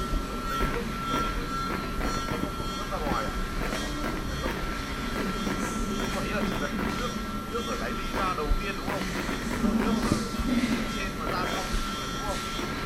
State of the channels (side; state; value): both; identical; correlation 1.00